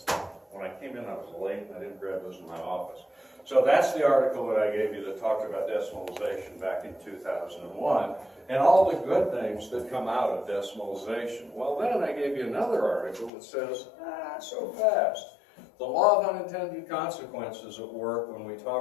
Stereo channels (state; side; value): drops out; right; at 13.3 s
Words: When I came in, I was late, and I didn't grab those in my office. So that's the article that I gave you that talked about decimalization back in 2001 and all the good things that come out of decimalization. Well, then I gave you another article that says, so fast. The law of unintended consequences at work when we